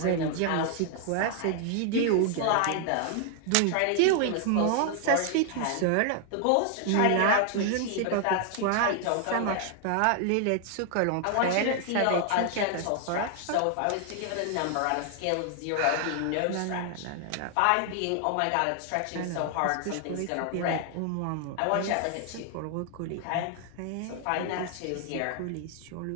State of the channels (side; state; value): both; different; correlation 0.00